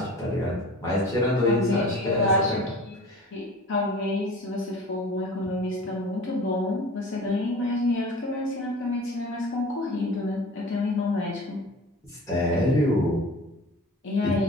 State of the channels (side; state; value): both; normal; correlation 0.40